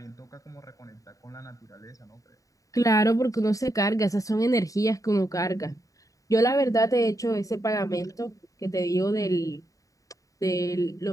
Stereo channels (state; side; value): late; right; 0.16 ms